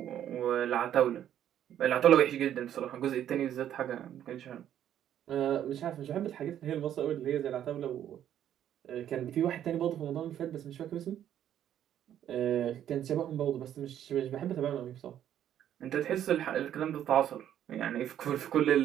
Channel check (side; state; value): left; quieter; 10.7 dB